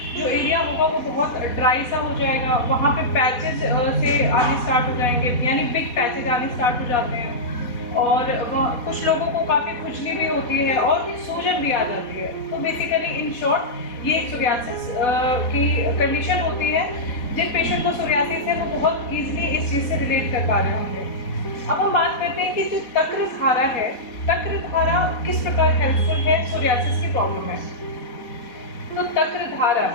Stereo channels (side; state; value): right; late; 4.1 ms